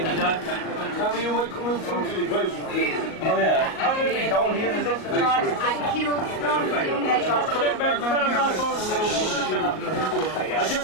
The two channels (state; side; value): late; right; 38 ms